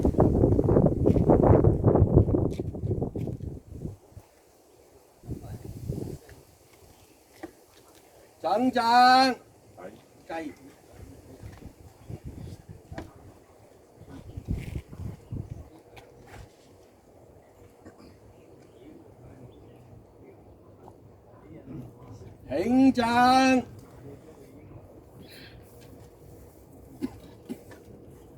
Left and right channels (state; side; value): identical; both; correlation 1.00